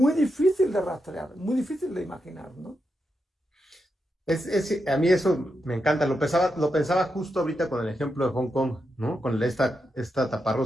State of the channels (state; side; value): normal; both; correlation 0.86